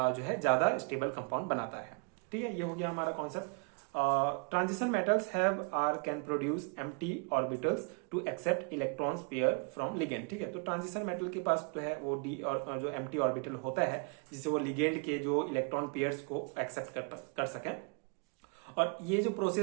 जो है ज्यादा स्टेबल कंपाउंड बनाता है। ठीक है, ये हो गया हमारा concept. Transition metals have or can produce empty orbitals to accept electrons pair from ligand. ठीक है, तो ट्रांजिशन मेटल के पास तो है वो डी और जो एम्प्टी ऑर्बिटल होता है जिससे वो लिगेंड के जो इलेक्ट्रॉन पेयर्स को एक्सेप्ट कर सकें। और ये जो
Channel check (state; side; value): quieter; left; 38.1 dB